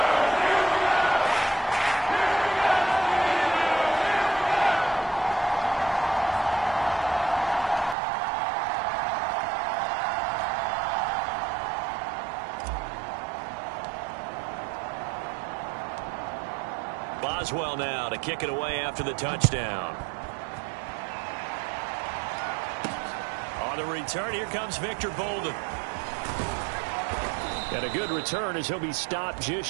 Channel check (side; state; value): left; drops out; at 8.0 s